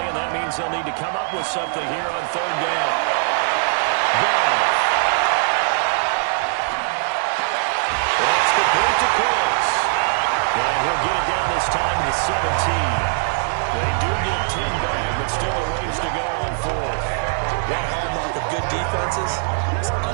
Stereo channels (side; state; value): left; silent; 59 dB below the other